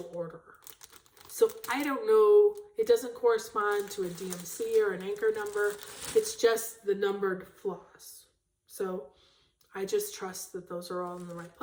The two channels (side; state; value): both; identical; correlation 1.00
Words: order. So I don't know, it doesn't correspond to a DMC or an anchor number. It's just the numbered floss. So I just trust that those are all in the right